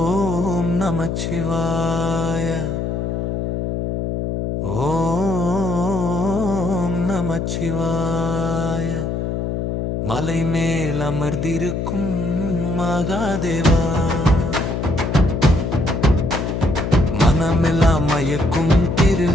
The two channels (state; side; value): noise; left; hum, 2 dB below the sound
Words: நமச்சிவாய. ஓம் நமச்சிவாய. மலை மேல் அமர்ந்திருக்கும் மகாதேவா, மனமெல்லாம் மயக்கும்